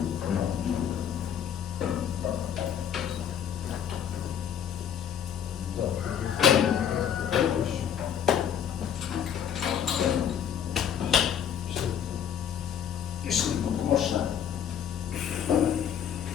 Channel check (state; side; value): quieter; right; 8.8 dB